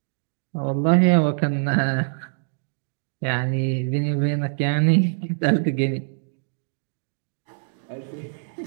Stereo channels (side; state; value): left; silent; digital silence